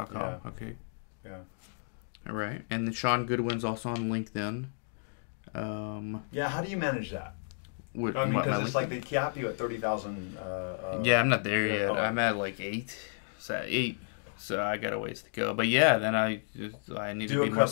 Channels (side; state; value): right; silent; digital silence